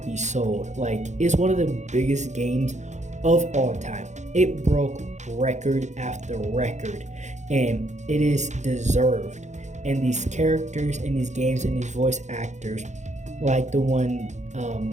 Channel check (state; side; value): late; left; 0.34 ms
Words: sold. Like, it's one of the biggest games of all time. It broke record after record, and it is deserved. And these characters in these games and these voice actors, like the one